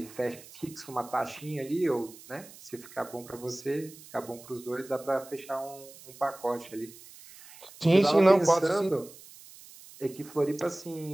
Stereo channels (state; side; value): noise; right; hiss, 19 dB below the sound